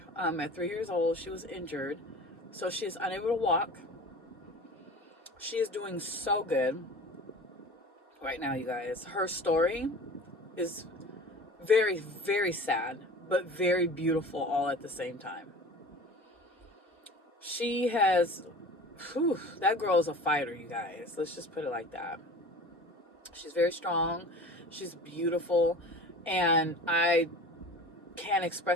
at 3 years old. She was injured, so she is unable to walk. She is doing so good right now, you guys. Her story is very, very sad, but very beautiful all at the same time. She has, that girl is a fighter, you guys. Let's just put it like that. She's very strong. She's beautiful. And I can't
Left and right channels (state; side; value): normal; both; correlation 0.39